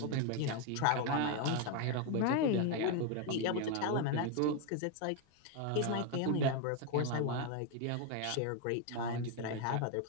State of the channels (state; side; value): different; both; correlation 0.01